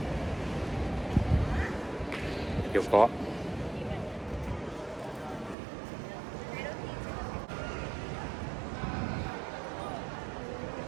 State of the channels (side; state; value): left; drops out; at 5.6 s